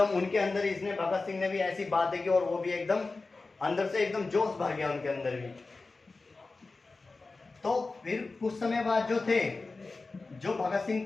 उनके अंदर इसने, भगत सिंह ने भी ऐसी बातें की, और वो भी एकदम अंदर से एकदम जोश भर गया उनके अंदर भी। तो फिर कुछ समय बाद जो थे, जो भगत सिंह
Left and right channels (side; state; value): right; quieter; 3.7 dB